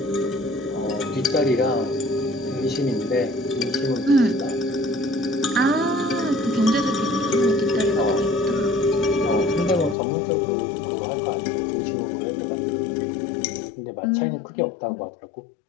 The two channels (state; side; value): drops out; right; at 10.0 s